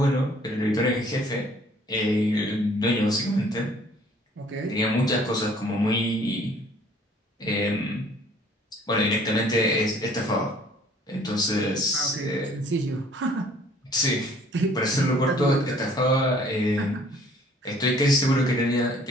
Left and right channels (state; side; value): normal; both; correlation 0.56